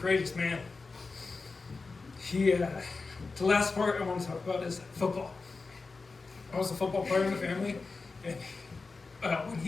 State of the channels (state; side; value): quieter; right; 4.1 dB